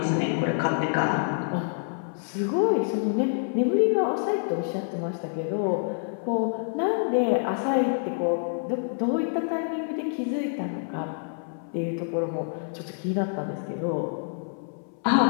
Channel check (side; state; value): right; silent; 57 dB below the other